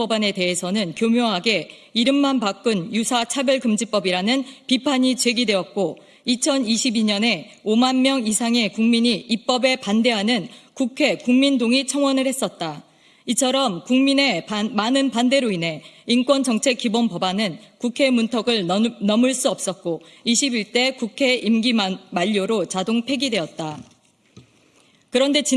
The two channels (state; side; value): identical; both; correlation 1.00